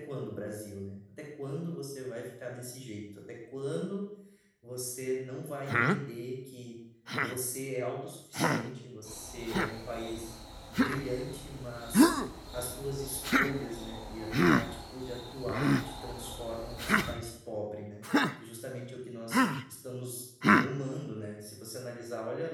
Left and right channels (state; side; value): identical; both; correlation 1.00